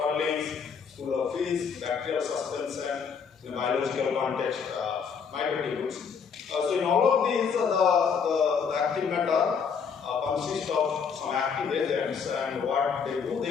school of physics, bacterial suspension, in a biological context, microtubules. So in all of these, the active matter consist of some active agents, and what they do,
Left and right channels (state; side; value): quieter; right; 6.3 dB